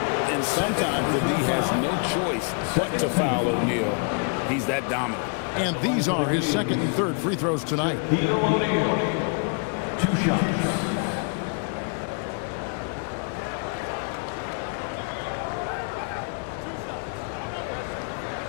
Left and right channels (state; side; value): quieter; right; 39.4 dB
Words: sometimes the D has no choice but to foul O'Neal. He's that dominant. And these are his 2nd and 3rd free throws tonight. Shaquille O'Neal, 2 shots.